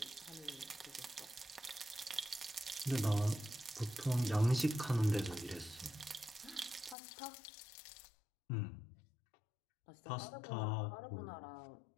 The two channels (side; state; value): right; drops out; at 7.0 s